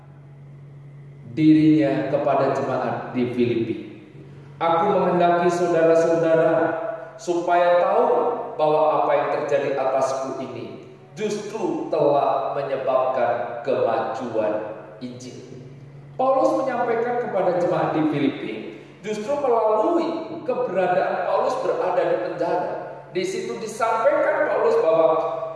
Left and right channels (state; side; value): identical; both; correlation 1.00